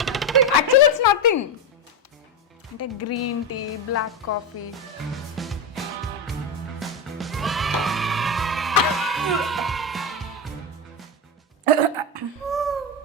Actually it's nothing. అంటే green tea, black coffee.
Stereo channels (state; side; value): normal; both; correlation 0.13